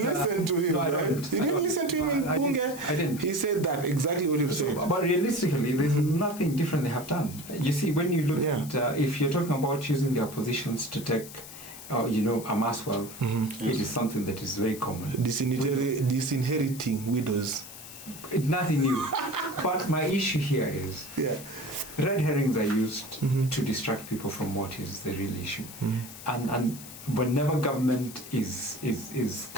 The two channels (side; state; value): left; noise; hiss, 14 dB below the sound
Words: to him, no, right? You didn't listen to him in Bunge? I didn't. He said that, exactly what you've said. But realistically, there's nothing different they have done. You see, when you look at, if you're talking about using their positions to take, amass wealth, it is something that is very common. Disinheriting widows. It's nothing new. But my issue here is red herrings are used to distract people from what is the real issue. And whenever government is